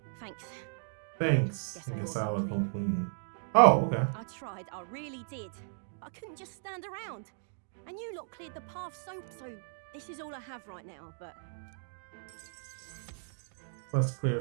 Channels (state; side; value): silent; left; digital silence